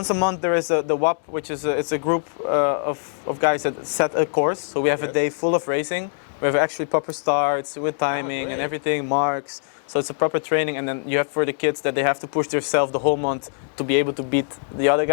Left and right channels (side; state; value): right; silent; digital silence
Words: a month there is the WAP, which is it's a group of guys that set a course. So we have a Yes. day full of racing. We have actually proper starts with timing and great. everything, marks, So it's a proper training, and then you have for the kids that they have to push themselves the whole month to be able to beat the other